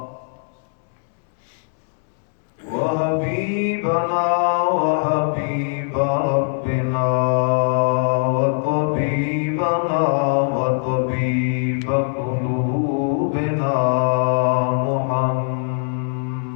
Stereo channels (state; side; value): silent; right; digital silence